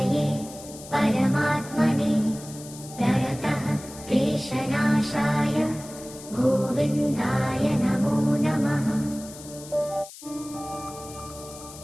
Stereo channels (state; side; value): noise; left; hiss, 16 dB below the sound